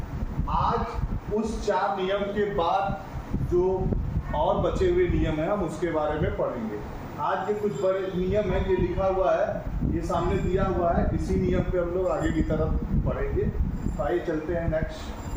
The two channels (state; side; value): identical; both; correlation 1.00